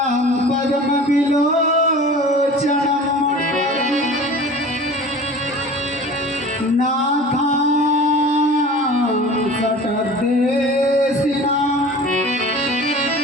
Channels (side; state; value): both; normal; correlation 0.40